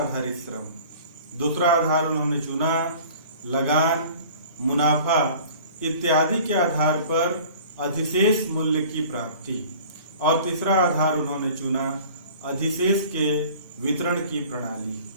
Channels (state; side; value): inverted; both; correlation -0.46